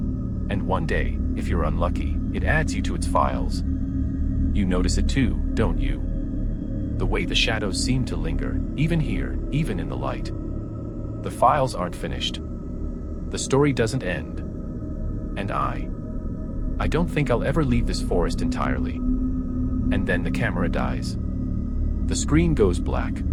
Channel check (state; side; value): identical; both; correlation 1.00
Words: And one day, if you're unlucky, it adds you to its files. You notice it too, don't you? The way the shadows seem to linger, even here, even in the light. The files aren't finished. The story doesn't end. And I don't think I'll ever leave this forest entirely. And then the camera dies. The screen goes black.